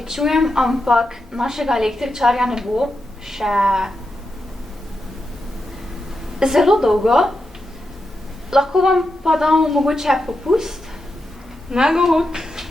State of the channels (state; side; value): normal; both; correlation 0.87